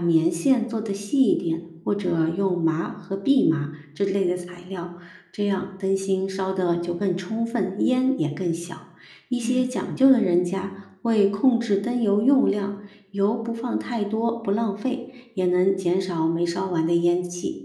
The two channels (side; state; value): both; identical; correlation 1.00